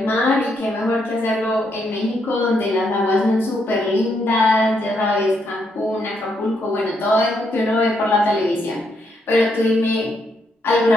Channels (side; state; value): both; normal; correlation 0.77